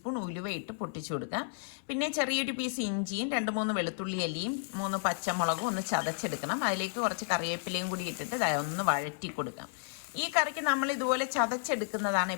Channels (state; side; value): silent; right; 56 dB below the other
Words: ഉലുവ ഇട്ട് പൊട്ടിച്ചു കൊടുക്കാം. പിന്നെ ചെറിയൊരു പീസ് ഇഞ്ചിയും 2-3 വെളുത്തുള്ളി അല്ലിയും 3 പച്ചമുളകും ഒന്ന് ചതച്ചെടുക്കണം. അതിലേക്ക് കുറച്ച് കറിവേപ്പിലയും കൂടി ഇട്ടിട്ട് ഒന്ന് വഴറ്റി കൊടുക്കാം. ഈ കറിക്ക് നമ്മൾ ഇതുപോലെ ചതച്ചെടുക്കുന്നതാണ്